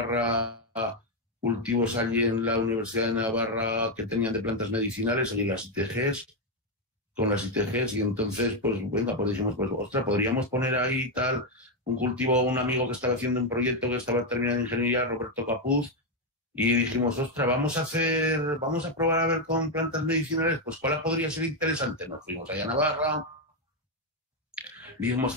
cultivos allí en la Universidad de Navarra que tenían de plantas medicinales, allí las ITGs, con las ITGs, y entonces, pues, venga, pues dijimos, pues, ostras, podríamos poner ahí tal, un cultivo, un amigo que estaba haciendo un proyecto que estaba terminando ingeniería, Roberto Capuz, y dijimos, ostras, vamos a probar a ver con plantas medicinales, pues, ¿cuál podría ser interesante? Nos fuimos allá a Navarra, vimos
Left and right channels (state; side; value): normal; both; correlation 0.04